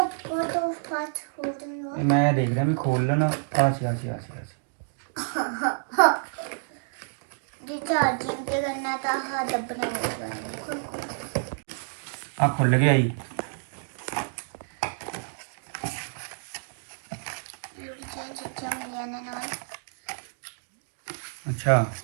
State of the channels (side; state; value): left; silent; digital silence